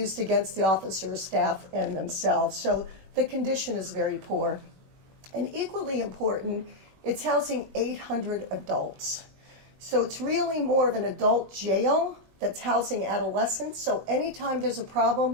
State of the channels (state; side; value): late; left; 21 ms